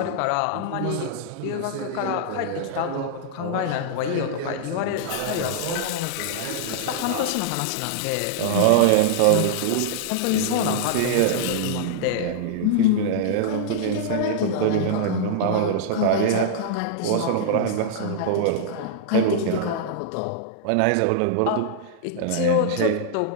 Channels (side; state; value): both; different; correlation -0.01